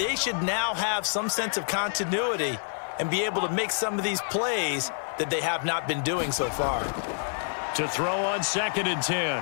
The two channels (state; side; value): silent; right; digital silence